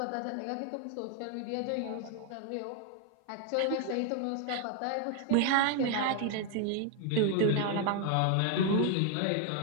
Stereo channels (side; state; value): both; different; correlation 0.00